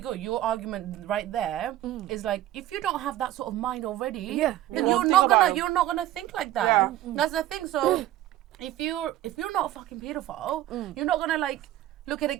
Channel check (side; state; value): left; quieter; 13.9 dB